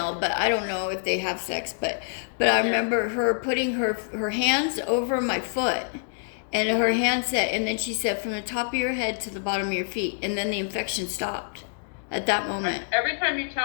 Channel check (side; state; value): right; silent; digital silence